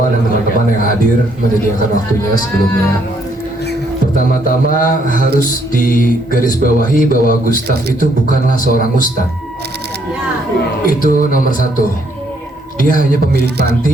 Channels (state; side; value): normal; both; correlation 0.70